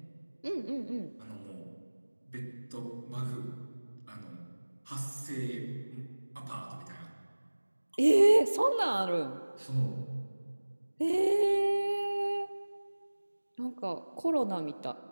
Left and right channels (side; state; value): both; inverted; correlation -1.00